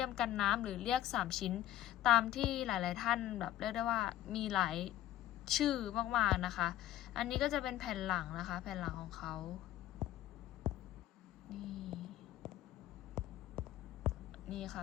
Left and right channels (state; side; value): quieter; right; 13.7 dB